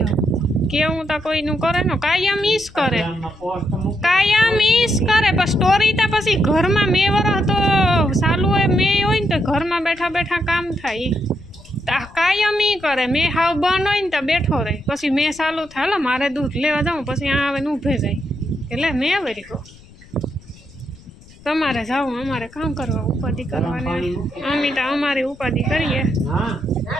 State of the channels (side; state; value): left; noise; rumble, 22 dB below the sound